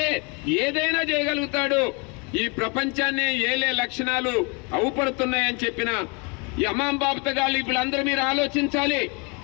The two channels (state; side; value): quieter; right; 31.4 dB